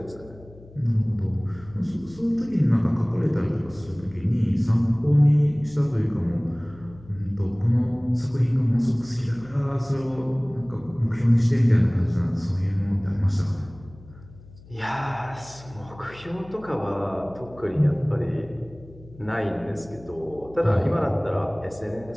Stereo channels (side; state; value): left; noise; hum, 21 dB below the sound